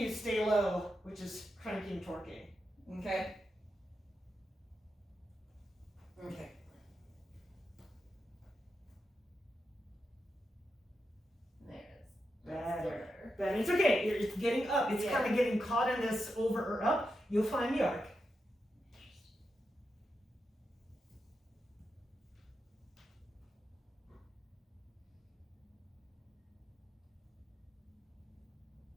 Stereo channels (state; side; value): normal; both; correlation 0.87